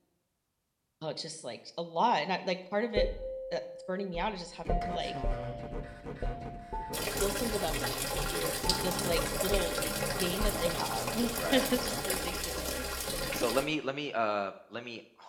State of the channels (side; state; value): both; identical; correlation 1.00